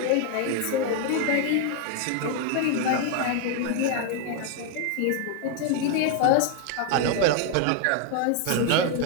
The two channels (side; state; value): both; different; correlation 0.01